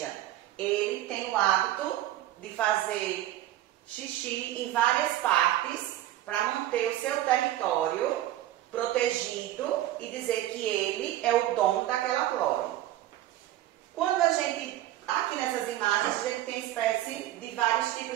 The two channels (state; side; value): quieter; left; 14.1 dB